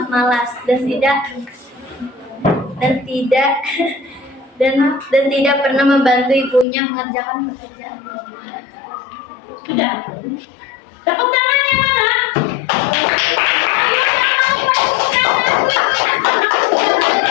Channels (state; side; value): drops out; right; at 6.7 s